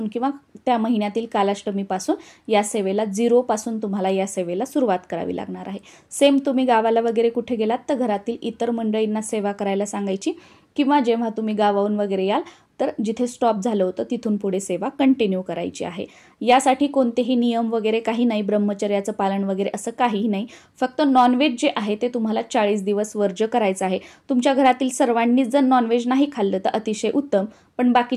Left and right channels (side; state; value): both; identical; correlation 1.00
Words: किंवा त्या महिन्यातील कालाष्टमीपासून या सेवेला 0 पासून तुम्हाला या सेवेला सुरुवात करावी लागणार आहे. सेम तुम्ही गावाला वगैरे कुठे गेलात तर घरातील इतर मंडळींना सेवा करायला सांगायची किंवा जेव्हा तुम्ही गावाहून वगैरे याल तर जिथे स्टॉप झालं होतं तिथून पुढे सेवा कंटिन्यू करायची आहे. यासाठी कोणतेही नियम वगैरे काही नाही, ब्रह्मचर्याचं पालन वगैरे असं काहीही नाही. फक्त नॉनव्हेज जे आहे ते तुम्हाला 40 दिवस वर्ज्य करायचं आहे. तुमच्या घरातील सर्वांनीच जर नॉनव्हेज नाही खाल्लं तर अतिशय उत्तम, पण